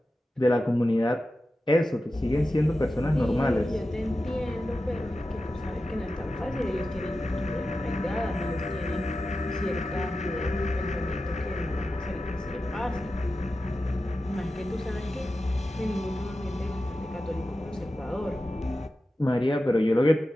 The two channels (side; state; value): both; normal; correlation 0.92